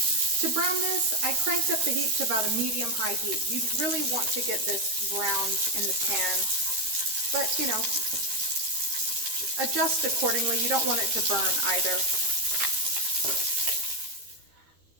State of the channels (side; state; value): left; late; 13 ms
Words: To brown this, I cranked up the heat to about a medium-high heat. You really want to get this browned in the pan, but you know, adjust accordingly. You don't want it to burn either.